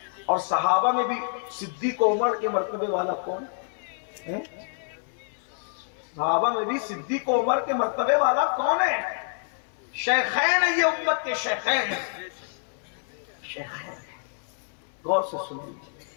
اور صحابہ میں بھی صدیق و عمر کے مرتبے والا کون ہے؟ صحابہ میں بھی صدیق و عمر کے مرتبے والا کون ہے؟ شیخین ہیں، یہ امت کے شیخین ہیں. شیخین. غور سے سن لیجیے،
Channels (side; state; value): right; silent; 60 dB below the other